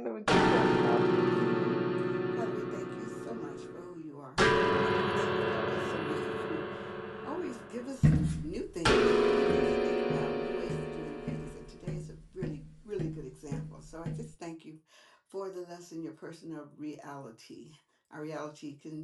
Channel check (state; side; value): identical; both; correlation 1.00